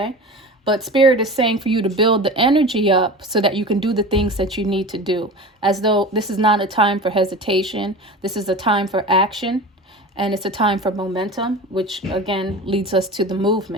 But Spirit is saying for you to build the energy up so that you can do the things that you need to do, as though this is not a time for hesitation. This is a time for action, and it's a time for momentum, which again leads us to the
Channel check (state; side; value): normal; both; correlation 0.33